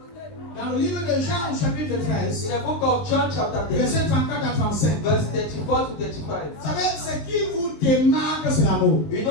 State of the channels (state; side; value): late; right; 19 ms